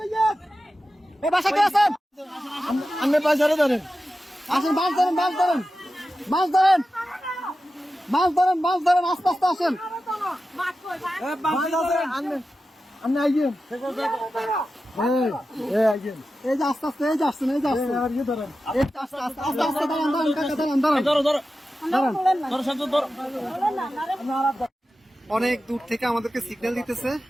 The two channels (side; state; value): both; normal; correlation 0.93